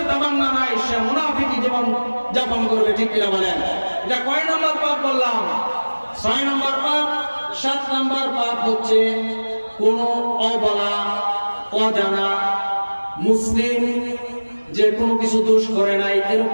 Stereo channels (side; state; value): both; inverted; correlation -1.00